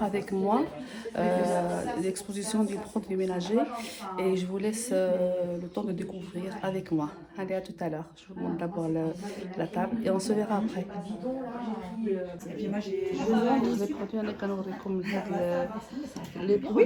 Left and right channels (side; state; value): both; identical; correlation 1.00